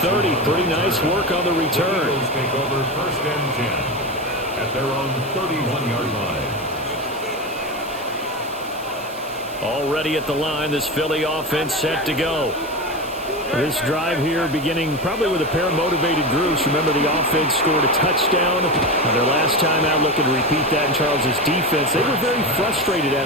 Pretty nice work on the return. The Eagles take over 1st and 10 at their own 31-yard line. Already at the line, this Philly offense set to go. This drive here beginning probably with a pair of motivated groups. Remember, the offense scored a touchdown on their last time out. Looking to repeat that in Charles' defense. They were very frustrated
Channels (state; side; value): noise; right; hiss, 19 dB below the sound